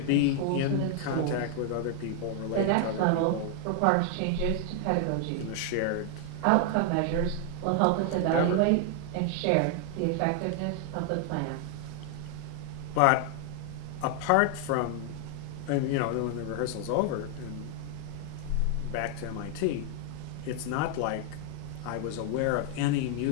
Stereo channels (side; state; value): both; different; correlation 0.00